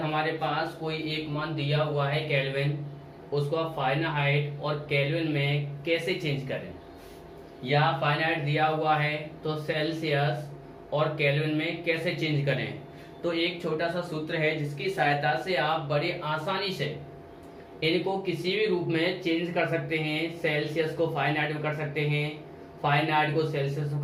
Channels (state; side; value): identical; both; correlation 1.00